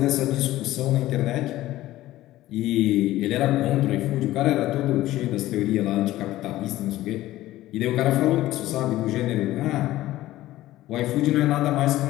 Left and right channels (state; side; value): quieter; right; 15.6 dB